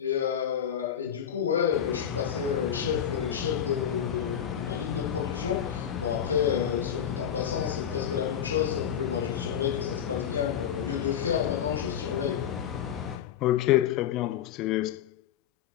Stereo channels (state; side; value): quieter; right; 9.2 dB